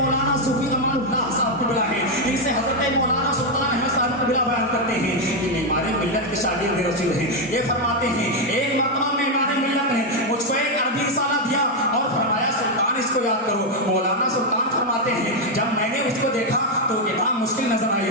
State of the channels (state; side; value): normal; both; correlation 0.03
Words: صوفی امان اللہ صاحب قبلہ ہیں، ان سے حضرت مولانا سلطان احمد صاحب قبلہ بیان کرتے ہیں کہ ہمارے ملت کے شاگرد رسول ہیں. یہ فرماتے ہیں ایک مرتبہ میں ہمارے ملت نے مجھ کو ایک عربی رسالہ دیا اور فرمایا سلطان اس کو یاد کرو. مولانا سلطان فرماتے ہیں جب میں نے اس کو دیکھا تو کتاب مشکل نظر آئی.